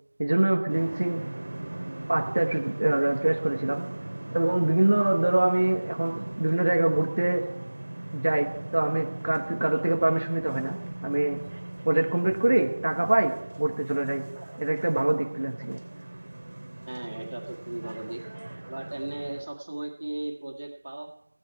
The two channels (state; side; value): inverted; both; correlation -1.00